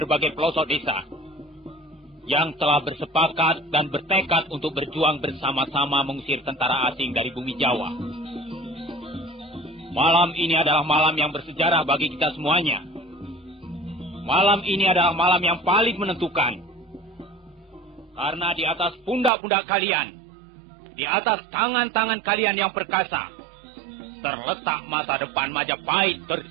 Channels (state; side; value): drops out; left; at 19.3 s